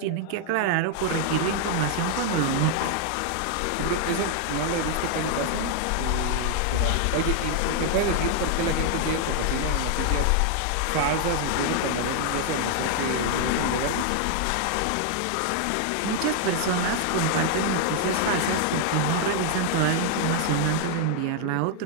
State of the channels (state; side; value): different; both; correlation 0.00